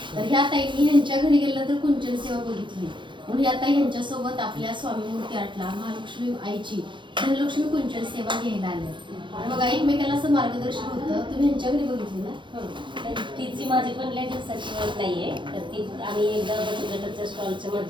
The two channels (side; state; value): left; late; 0.23 ms